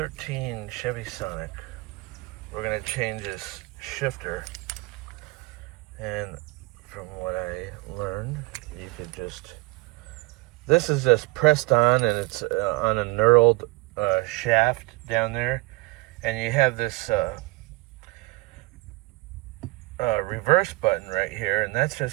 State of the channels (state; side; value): quieter; left; 23.7 dB